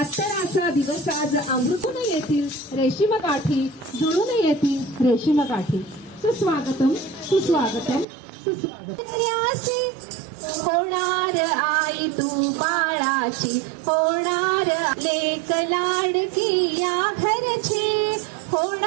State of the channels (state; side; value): drops out; left; at 8.1 s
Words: दिवस आज अमृतून येतील रेशीम गाठी, जुळून येतील रेशीम गाठी. सुस्वागतम सुस्वागतम सुस्वागतम. होणार आई तू बाळाची, होणार लेक लाडकी या घरची,